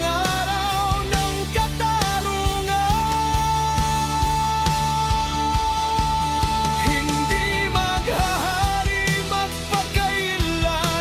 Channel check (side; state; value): both; identical; correlation 1.00